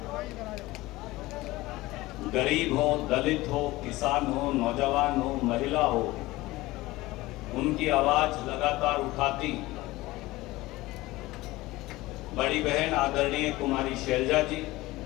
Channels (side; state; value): right; quieter; 19.2 dB